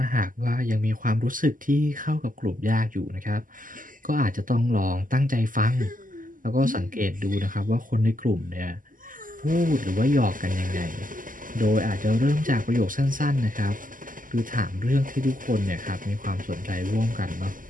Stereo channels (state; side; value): late; left; 0.39 ms